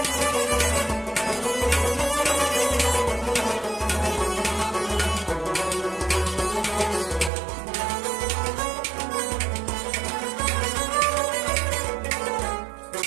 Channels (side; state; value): left; drops out; at 7.3 s